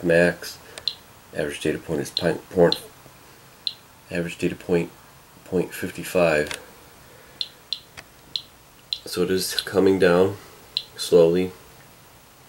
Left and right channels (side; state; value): both; identical; correlation 1.00